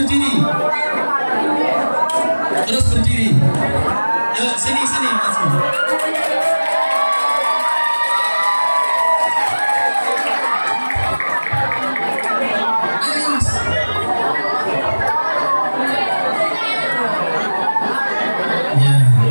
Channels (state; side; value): inverted; both; correlation -1.00